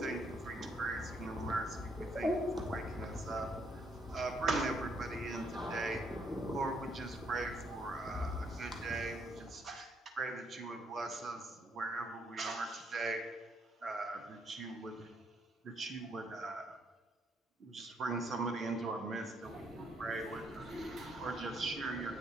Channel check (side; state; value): both; normal; correlation 0.71